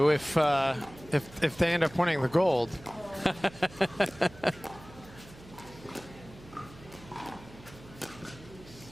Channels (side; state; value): right; noise; hum, 20 dB below the sound